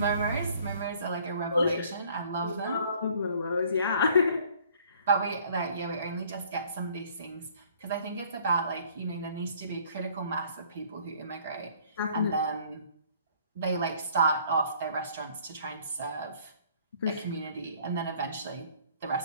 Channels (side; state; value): both; inverted; correlation -0.57